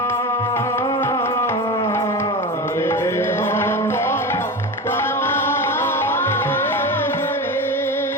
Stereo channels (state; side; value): normal; both; correlation 0.25